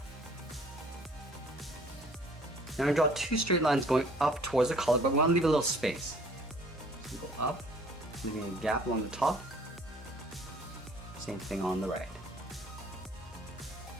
Now I'm going to draw 2 straight lines going up towards the collar, but we want to leave a little space. So go up, leaving a gap along the top, same thing on the right.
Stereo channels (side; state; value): both; normal; correlation 0.55